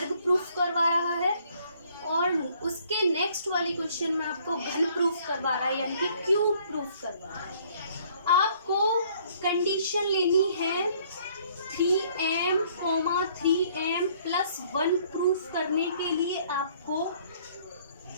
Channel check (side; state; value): both; inverted; correlation -0.61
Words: प्रूफ करवा रहा है, और उसके नेक्स्ट वाले क्वेश्चन में आपको घन प्रूफ करवा रहा है, यानी कि क्यूब प्रूफ करवा रहा है। आपको कंडीशन लेनी है 3m, 3m + 1 प्रूफ करने के लिए आपको